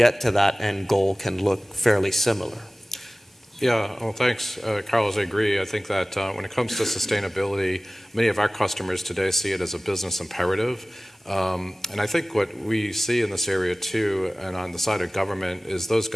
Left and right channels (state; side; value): normal; both; correlation 0.98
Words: to that end goal can look fairly similar. Yeah, well, thanks, Carlos. I agree. I think that when it comes to sustainability, many of our customers today see it as a business imperative. And I think what we see in this area too, and on the side of government, is those